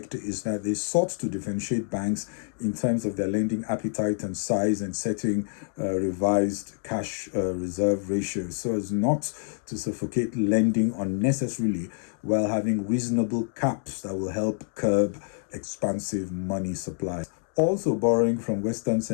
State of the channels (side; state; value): right; silent; 60 dB below the other